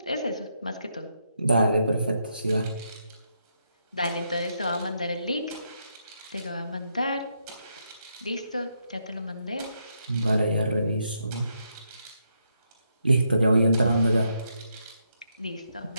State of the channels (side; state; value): both; inverted; correlation -0.79